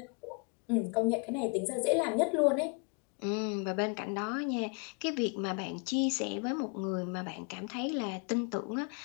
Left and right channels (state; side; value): quieter; right; 33.7 dB